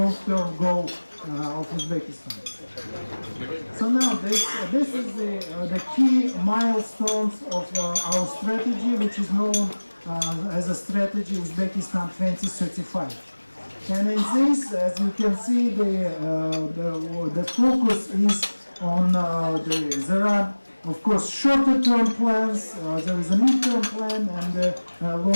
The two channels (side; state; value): both; inverted; correlation -1.00